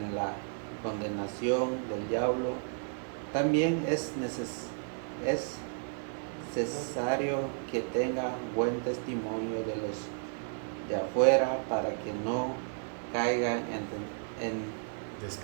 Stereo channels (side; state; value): left; silent; digital silence